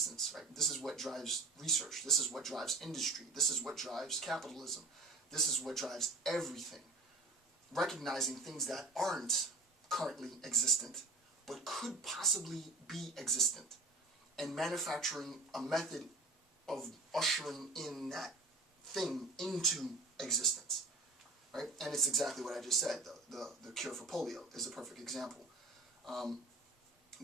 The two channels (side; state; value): left; quieter; 3.3 dB